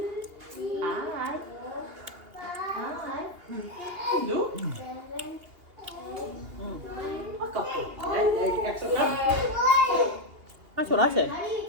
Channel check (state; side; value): late; left; 2.8 ms